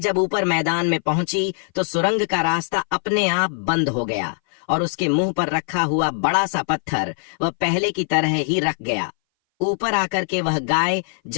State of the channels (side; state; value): right; silent; 60 dB below the other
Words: ऊपर मैदान में पहुंची तो सुरंग का रास्ता अपने आप बंद हो गया और उसके मुंह पर रखा हुआ बड़ा सा पत्थर वह पहले की तरह ही रख गया। ऊपर आकर के वह गाय